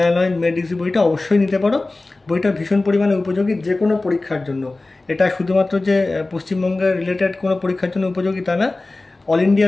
নলেজ মেড ইজি বইটা অবশ্যই নিতে পারো। বইটা ভীষণ পরিমাণে উপযোগী যে কোনো পরীক্ষার জন্য। এটা শুধুমাত্র যে পশ্চিমবঙ্গের রিলেটেড কোনো পরীক্ষার জন্য উপযোগী তা না, অল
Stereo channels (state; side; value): quieter; right; 3.1 dB